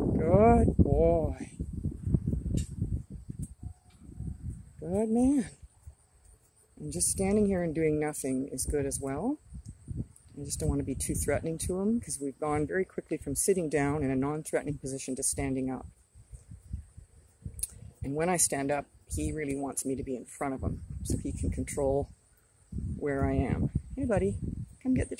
Good boy. Good man. And just standing here and doing nothing is good as well. I just don't want to be too threatening to him because we've gone very quickly from sitting down in a non-threatening position to standing up. And when I stand up, he really wants me to be in front of him so he can control where I am. Hey, buddy, come get the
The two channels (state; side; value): identical; both; correlation 1.00